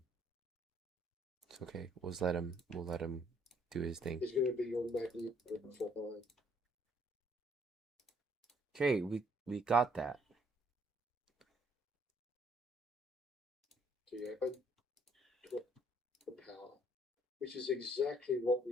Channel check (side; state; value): both; normal; correlation 0.65